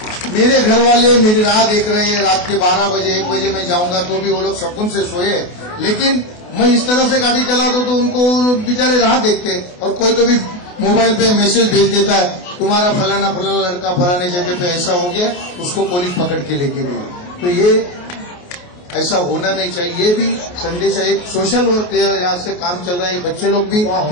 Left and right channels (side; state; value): right; late; 28 ms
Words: मेरे घर वाले मेरी राह देख रहे हैं। रात के 12 बजे 1 बजे मैं जाऊंगा तो भी वो लोग सुकून से सोए, लेकिन मैं इस तरह से गाड़ी चला दूं तो उनको बेचारे राह देखते हैं। और कोई तो भी मोबाइल पे मैसेज भेज देता है, तुम्हारा फलाना फलाना लड़का फलाने जगह पे ऐसा हो गया, उसको पुलिस पकड़ के लेके गई। तो ये ऐसा होना नहीं चाहिए। ये भी संदेशा एक सोशल वर्क यहाँ से काम चल रहा है। बच्चे लोग भी